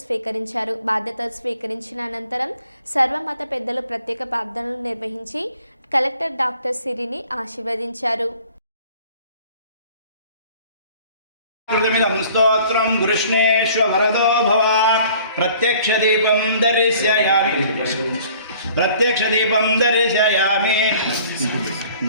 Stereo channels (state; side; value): inverted; both; correlation -0.53